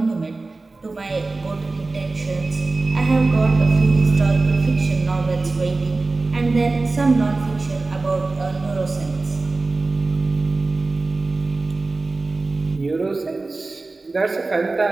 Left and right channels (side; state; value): left; quieter; 3.5 dB